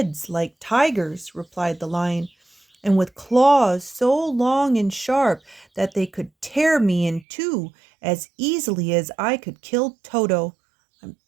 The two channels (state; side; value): drops out; left; at 7.2 s